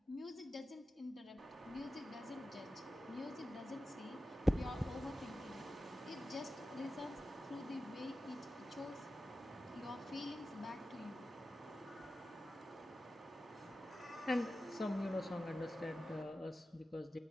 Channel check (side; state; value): both; normal; correlation 0.93